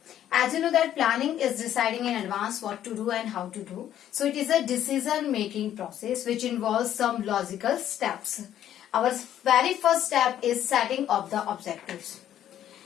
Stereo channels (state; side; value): quieter; right; 11.2 dB